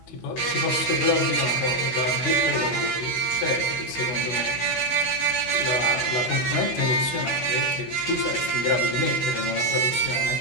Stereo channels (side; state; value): right; late; 16 ms